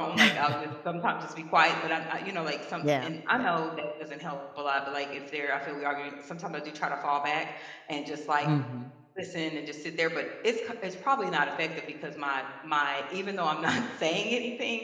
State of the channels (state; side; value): identical; both; correlation 1.00